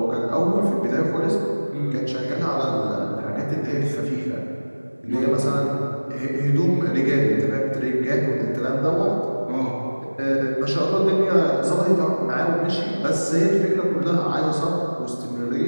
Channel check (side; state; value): both; inverted; correlation -1.00